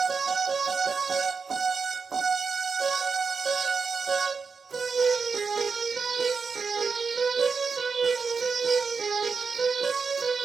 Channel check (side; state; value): left; quieter; 5.2 dB